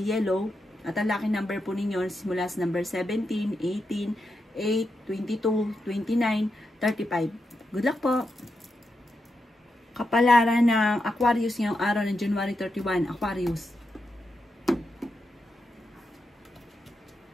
yellow. At ang lucky number po ninyo simula sa number 17, 18, 8, 22, 29, 35. Good luck po! Kapalaran ng Aquarius ngayong araw ng January 31. Aquarius.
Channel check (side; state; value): both; normal; correlation 0.86